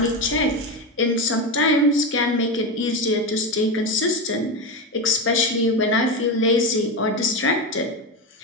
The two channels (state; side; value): normal; both; correlation 0.16